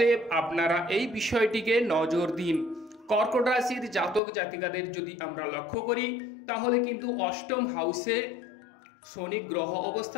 আপনারা এই বিষয়টিকে নজর দিন। কর্কট রাশির জাতক জাতিকাদের যদি আমরা লক্ষ্য করি তাহলে কিন্তু অষ্টম হাউসে শনি গ্রহ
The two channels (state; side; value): drops out; right; at 4.2 s